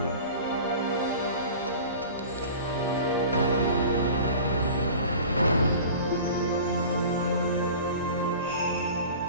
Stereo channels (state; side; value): inverted; both; correlation -0.40